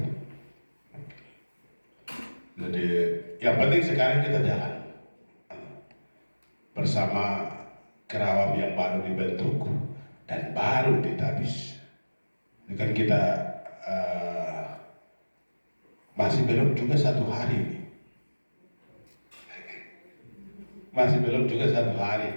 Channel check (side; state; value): both; inverted; correlation -1.00